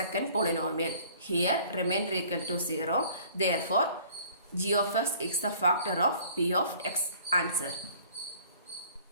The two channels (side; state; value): both; inverted; correlation -0.53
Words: polynomial. Here remainder equal to 0. Therefore, g of x is the factor of p of x. Answer.